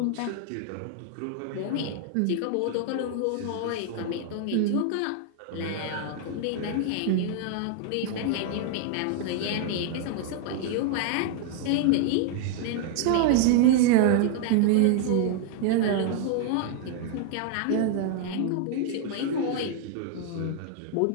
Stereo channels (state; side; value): different; both; correlation 0.00